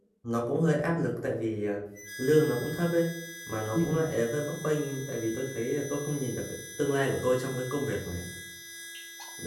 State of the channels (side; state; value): both; identical; correlation 1.00